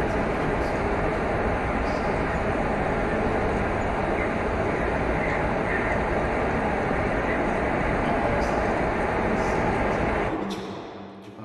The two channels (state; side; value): identical; both; correlation 1.00